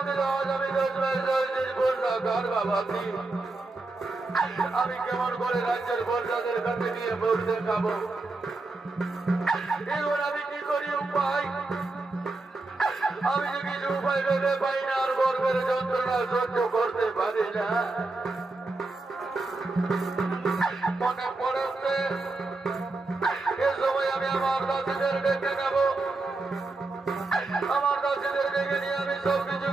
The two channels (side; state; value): left; quieter; 3.3 dB